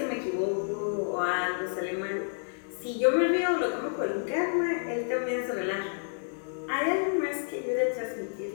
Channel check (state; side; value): silent; right; digital silence